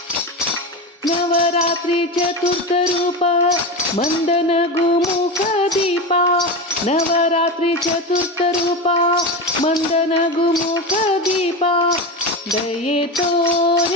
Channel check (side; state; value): both; normal; correlation 0.20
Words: ನವರಾತ್ರಿ ಚತುರ್ಥ ರೂಪ ಮಂದನ ಗುಮುಖ ದೀಪ, ನವರಾತ್ರಿ ಚತುರ್ಥ ರೂಪ ಮಂದನ ಗುಮುಖ ದೀಪ, ದಯೆ